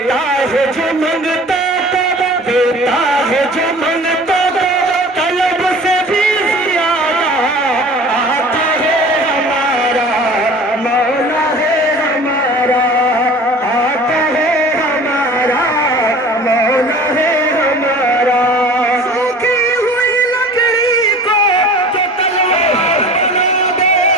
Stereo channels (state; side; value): normal; both; correlation 0.42